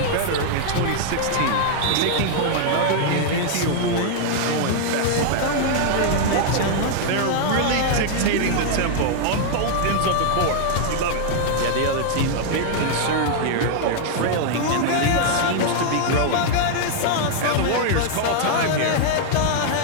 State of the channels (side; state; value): both; different; correlation -0.01